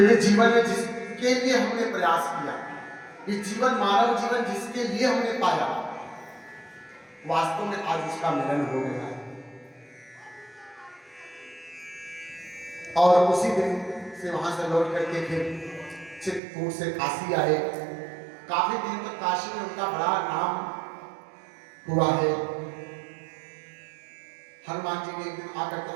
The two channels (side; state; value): left; drops out; at 16.4 s